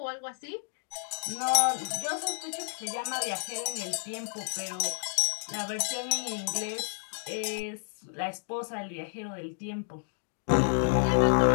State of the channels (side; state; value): right; silent; digital silence